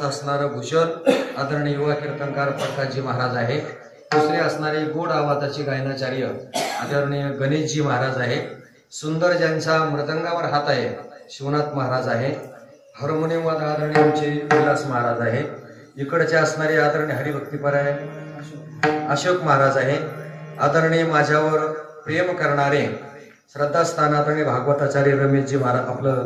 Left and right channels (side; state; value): both; identical; correlation 1.00